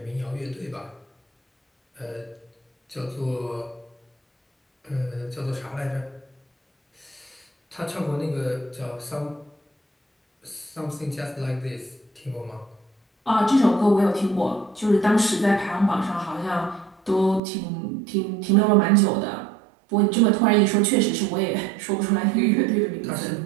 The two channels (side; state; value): left; drops out; at 17.4 s